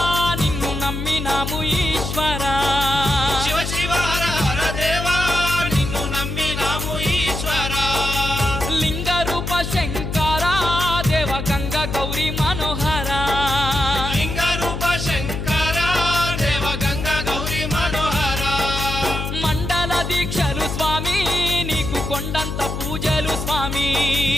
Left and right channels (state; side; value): noise; left; hum, 4 dB below the sound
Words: నిన్ను నమ్మినాము ఈశ్వరా శివ శివ హర హర దేవా నిన్ను నమ్మినాము ఈశ్వరా లింగ రూప శంకరా దేవ గంగ గౌరీ మనోహరా లింగ రూప శంకరా దేవ గంగ గౌరీ మనోహరా మండల దీక్షలు స్వామి నీకు కొండంత పూజలు స్వామి